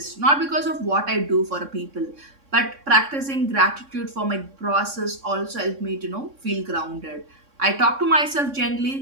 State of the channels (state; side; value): late; left; 3.6 ms